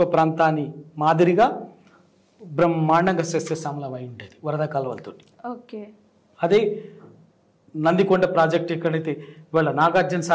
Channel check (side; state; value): both; identical; correlation 1.00